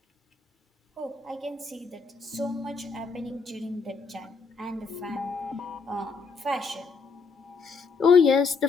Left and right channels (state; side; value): quieter; right; 4.8 dB